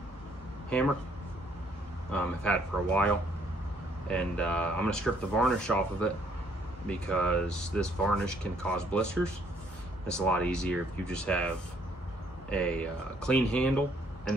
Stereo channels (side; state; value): both; normal; correlation 0.66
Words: hammer. I've had it for a while, and I'm going to strip the varnish off of it because this varnish can cause blisters. It's a lot easier if you just have a clean handle,